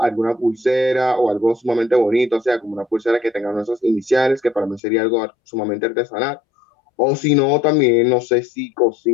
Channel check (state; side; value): drops out; right; at 4.8 s